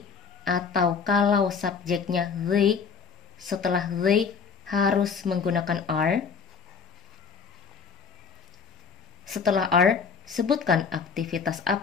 atau kalau subjeknya they, setelah they harus menggunakan are. Setelah are, sebutkan aktivitas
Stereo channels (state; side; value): quieter; right; 6.0 dB